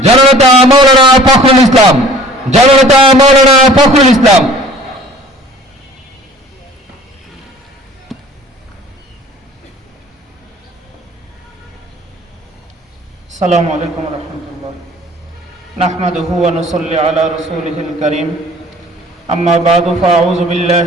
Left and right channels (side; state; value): both; normal; correlation 0.49